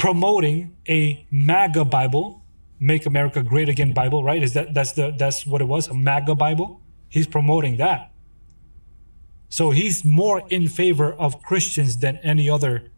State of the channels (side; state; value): both; inverted; correlation -1.00